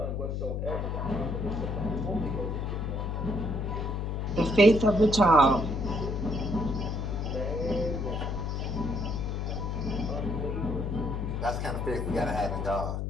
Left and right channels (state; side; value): noise; left; hum, 1 dB below the sound